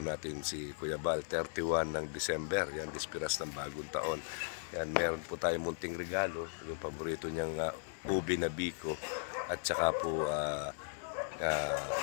si Kuya Bal, 31 ng December. Yan, dispiras ng bagong taon. Yan, meron po tayong munting regalo, yung paborito niyang ubi na biko at saka po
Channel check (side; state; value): right; silent; 53 dB below the other